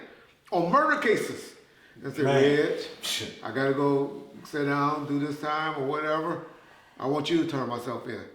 on murder cases. And said, Red, I gotta go sit down, do this time or whatever. I want you to turn myself in.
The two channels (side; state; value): both; identical; correlation 1.00